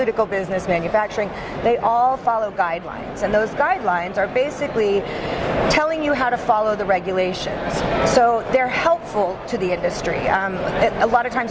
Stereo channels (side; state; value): both; identical; correlation 1.00